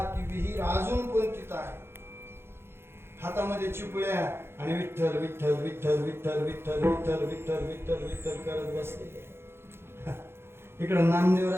ती विहीर अजून पण तिथं आहे. हातामध्ये चिपळ्या आणि विठ्ठल विठ्ठल विठ्ठल विठ्ठल विठ्ठल विठ्ठल विठ्ठल विठ्ठल विठ्ठल करत बसलेले. इकडे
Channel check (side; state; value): left; late; 0.12 ms